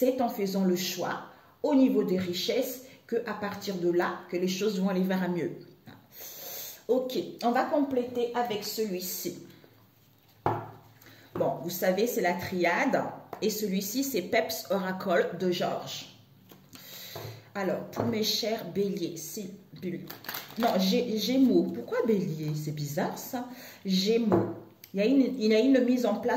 en faisant le choix au niveau des richesses qu'à partir de là, que les choses vont aller vers un mieux. Ok, on va compléter avec celui-ci. Bon, vous savez, c'est la triade et celui-ci, c'est Peps Oracle de Georges. Alors, pour mes chers béliers, c'est non, Gémeaux. Pourquoi bélier? C'est bizarre ça. Gémeaux. Il y a une mise en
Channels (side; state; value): both; identical; correlation 1.00